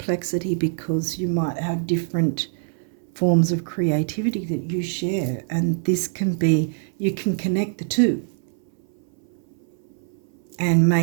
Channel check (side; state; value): left; silent; 63 dB below the other